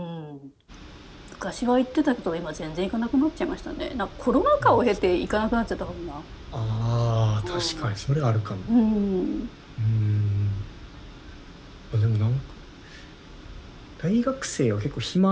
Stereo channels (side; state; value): both; identical; correlation 1.00